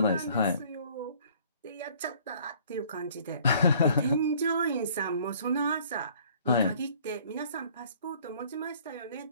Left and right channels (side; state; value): both; inverted; correlation -0.55